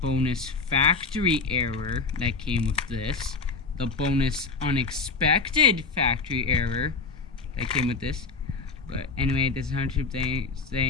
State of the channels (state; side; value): quieter; right; 4.5 dB